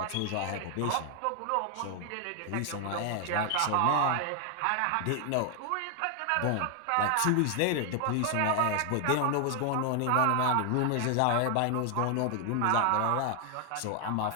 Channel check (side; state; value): both; different; correlation 0.00